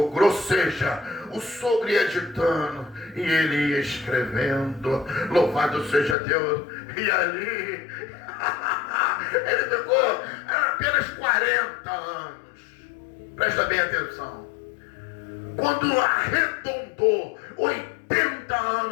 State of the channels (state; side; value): drops out; right; at 6.2 s